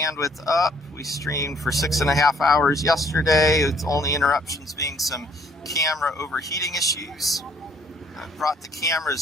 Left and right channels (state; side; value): normal; both; correlation 0.63